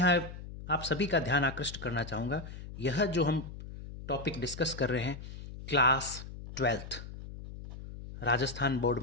आप सभी का ध्यान आकृष्ट करना चाहूँगा, यह जो हम टॉपिक डिस्कस कर रहे हैं क्लास 12th राजस्थान बोर्ड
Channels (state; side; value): noise; left; hum, 12 dB below the sound